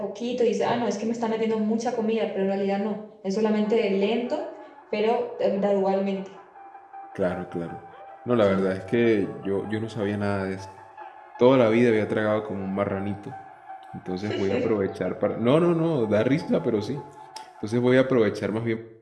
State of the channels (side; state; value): both; identical; correlation 1.00